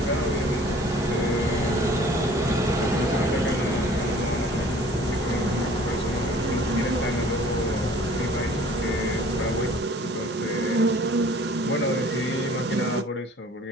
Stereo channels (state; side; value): normal; both; correlation 0.51